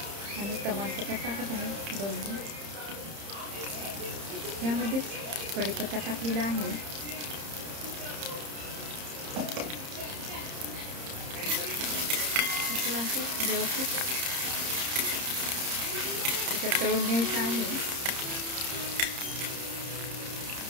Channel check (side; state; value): left; late; 30 ms